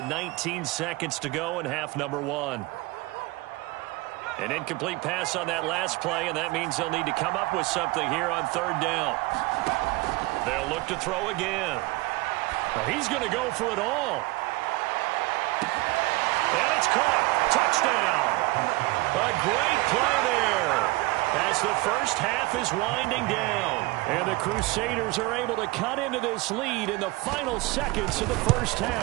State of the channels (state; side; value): quieter; left; 22.1 dB